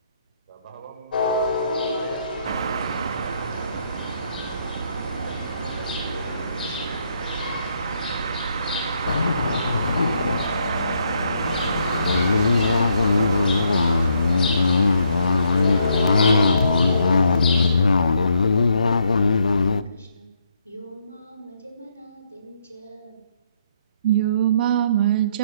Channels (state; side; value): inverted; both; correlation -0.74